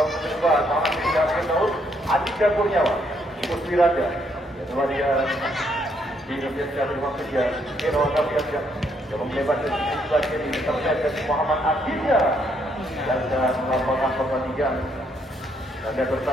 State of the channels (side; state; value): both; normal; correlation 0.72